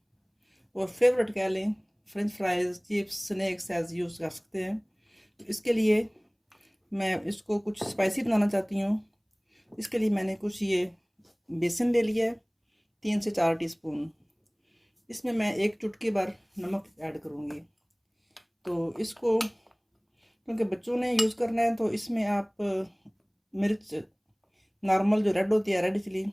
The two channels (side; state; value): both; identical; correlation 1.00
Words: और फेवरेट कह लें french fries, chips, snacks as use कर सकते हैं। तो इसके लिए मैं इसको कुछ स्पाइसी बनाना चाहती हूँ। इसके लिए मैंने कुछ ये बेसन ले लिया है, 3 से 4 टीस्पून। इसमें मैं 1 चुटकी भर नमक ऐड करूँगी। तो इसको क्योंकि बच्चों ने यूज़ करना है तो इसमें आप मिर्च नॉर्मल जो रेड होती है, रेड चिली,